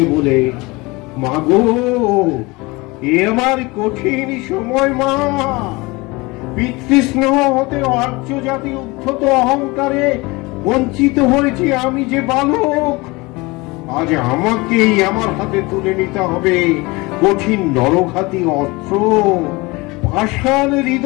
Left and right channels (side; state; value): right; quieter; 23.8 dB